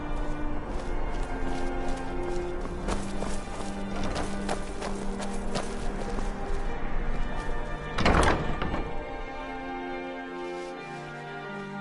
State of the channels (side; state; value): both; identical; correlation 1.00